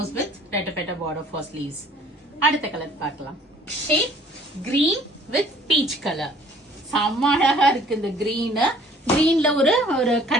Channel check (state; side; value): normal; both; correlation 0.55